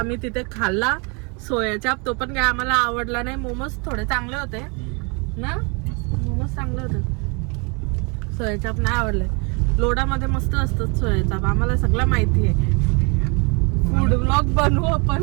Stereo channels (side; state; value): left; quieter; 32.4 dB